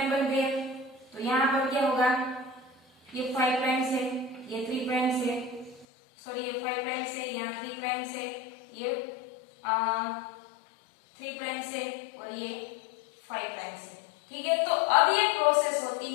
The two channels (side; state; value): right; drops out; at 5.9 s